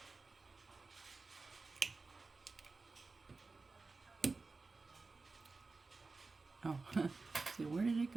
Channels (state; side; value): quieter; left; 3.9 dB